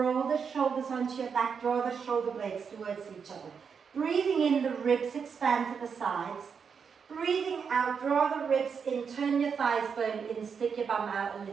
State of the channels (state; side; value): quieter; left; 6.3 dB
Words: the shoulders onto your back, draw the shoulder blades towards each other. Breathing in, the ribs expand to the sides. Breathing out, draw the ribs in, turn your thighs bone in, stick your bum out a